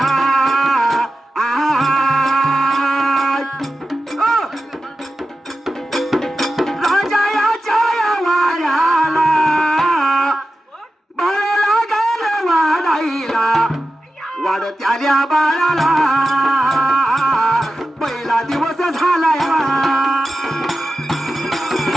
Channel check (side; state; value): both; normal; correlation 0.92